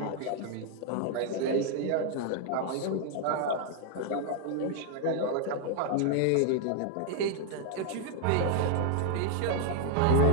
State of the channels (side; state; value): both; different; correlation 0.00